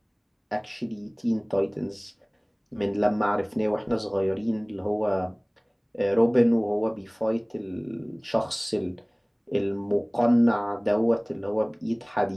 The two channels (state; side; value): identical; both; correlation 1.00